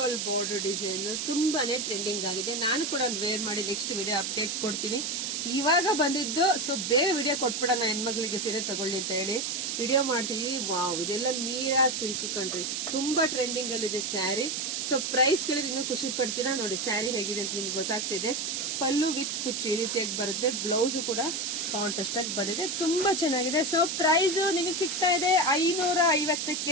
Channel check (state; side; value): noise; right; hiss, 2 dB below the sound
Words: ಬೋರ್ಡರ್ ಡಿಸೈನ್ ತುಂಬಾನೇ ಟ್ರೆಂಡಿಂಗ್ ಆಗಿದೆ. ನಾನು ಕೂಡ ಒಂದು ವೇರ್ ಮಾಡಿ ನೆಕ್ಸ್ಟ್ ವಿಡಿಯೋ ಅಪ್ಡೇಟ್ ಕೊಡ್ತೀನಿ. ಇವಾಗ ಬಂದಿದ್ದು, ಸೊ ಬೇಗ ವಿಡಿಯೋ ಕೊಟ್ಬಿಡೋಣ, ಹೆಣ್ಮಕ್ಳಿಗೆ ಸೀರೆ ತಗೊಳ್ಳಿ ಅಂತ ಹೇಳಿ ವಿಡಿಯೋ ಮಾಡ್ತಿದೀವಿ. ವಾವ್, ಇದೆಲ್ಲ ಮೀರಾ ಸಿಲ್ಕ್ ಕಂಡ್ರಿ, ತುಂಬಾ ಟ್ರೆಂಡಿಂಗ್ ಅಲ್ಲಿ ಇದೆ ಸ್ಯಾರಿ. ಸೊ ಪ್ರೈಸ್ ಕೇಳಿದ್ರೆ ಇನ್ನೂ ಖುಷಿ ಪಡ್ತೀರಾ. ನೋಡಿ ಸ್ಯಾರಿ ಹೇಗಿದೆ ಅಂತ ನಿಮ್ಗೆ ಗೊತ್ತಾಗ್ತಿದೆ. ಪಲ್ಲು ವಿತ್ ಕುಚ್ಚು ಈ ರೀತಿಯಾಗಿ ಬರುತ್ತೆ. ಬ್ಲೌಸ್ ಕೂಡ ಕಾಂಟ್ರಾಸ್ಟ್ ಆಗಿ ಬಂದಿದೆ, ತುಂಬಾ ಚೆನ್ನಾಗಿದೆ. ಸೊ ಪ್ರೈಸ್ ನಿಮಗೆ ಸಿಗ್ತಾ ಇದೆ